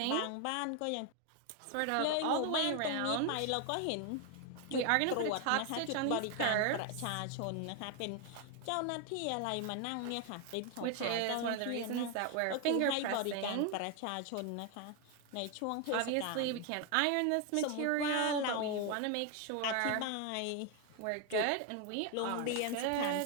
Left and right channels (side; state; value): both; different; correlation 0.01